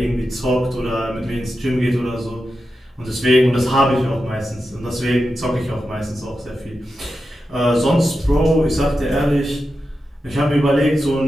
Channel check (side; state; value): both; normal; correlation 0.90